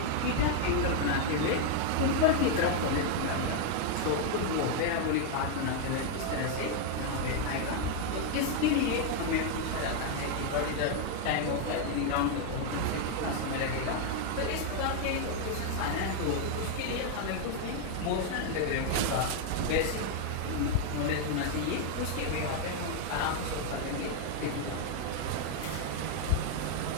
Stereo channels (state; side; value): different; both; correlation 0.00